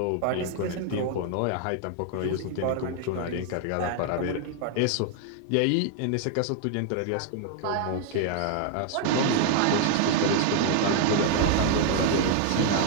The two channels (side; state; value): both; different; correlation 0.00